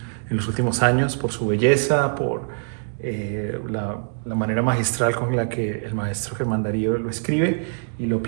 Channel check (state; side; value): silent; left; digital silence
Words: en los últimos años por su belleza, por la manera magistral con la que el maestro Germán Darío lo escribe y lo